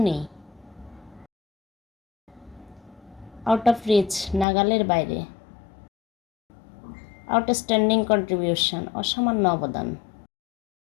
নেই। Out of reach, নাগালের বাইরে। Outstanding contribution, অসামান্য অবদান।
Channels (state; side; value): drops out; right; at 4.5 s